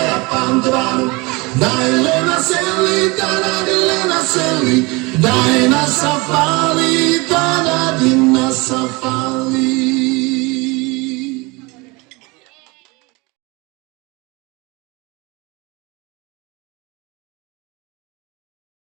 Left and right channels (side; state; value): left; quieter; 25.6 dB